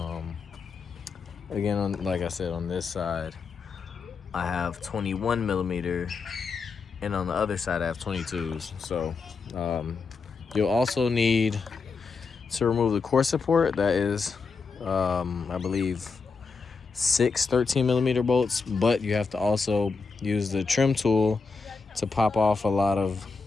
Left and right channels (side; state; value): right; quieter; 4.7 dB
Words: Again, like I said, on this side, I have 21 millimeter, and on the other side, I have 22s. So you'll also need to remove the core support. That is, I believe, 6 13 millimeter bolts, but you have to also use the trim tool to pop off a lot of